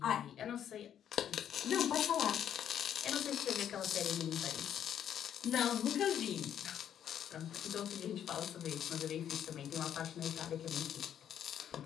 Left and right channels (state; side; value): quieter; right; 9.7 dB